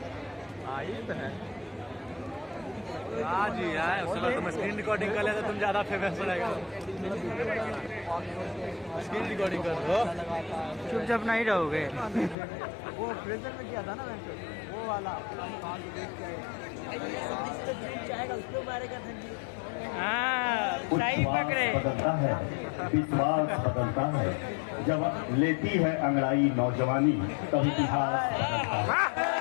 हाँ जी यार, उसके तुम स्क्रीन रिकॉर्डिंग कर लेते तुम ज्यादा फेमस रहेगा। स्क्रीन रिकॉर्डिंग कर दो, चुपचाप नहीं रहोगे। वो प्रेजर में किया था ना मैं वो वाला देख के हाँ सही पकड़े। बदलता है, विश्वास बदलता है। जब लेती है अंगड़ाई नौजवानी तब इतिहास बदलता है।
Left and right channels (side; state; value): right; drops out; at 12.4 s